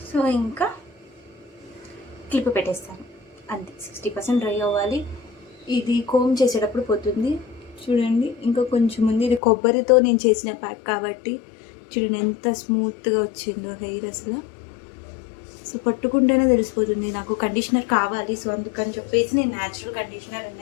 సో ఇంకా క్లిప్ పెట్టేస్తాను అంతే. 60% డ్రై అవ్వాలి. ఇది కోమ్ చేసేటప్పుడు పోతుంది చూడండి. ఇంకా కొంచెం ఉంది, ఇది కొబ్బరితో నేను చేసిన ప్యాక్ కాబట్టి చూడండి ఎంత స్మూత్గా వచ్చిందో హెయిర్. అసలు సో పట్టుకుంటేనే తెలిసిపోతుంది నాకు కండిషనర్ కావాలి. సో అందుకని చెప్పేసి నేను న్యాచురల్ కండిషనర్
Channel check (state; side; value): drops out; right; at 9.4 s